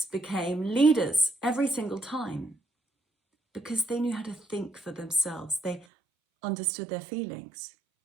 became leaders every single time because they knew how to think for themselves. They understood their feelings.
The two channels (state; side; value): drops out; left; at 5.9 s